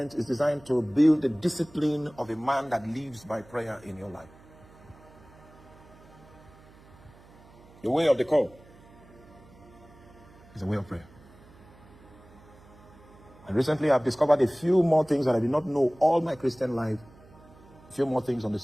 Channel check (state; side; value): noise; right; hum, 24 dB below the sound